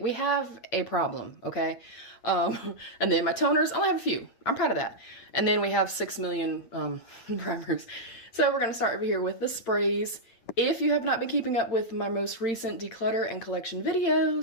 have a problem, okay? And then my toners, I only have a few. I'm proud of that. And then we have 6 million primers. So we're going to start over here with the sprays. If you have not been keeping up with my most recent declutter and collection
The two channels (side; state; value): right; late; 8.8 ms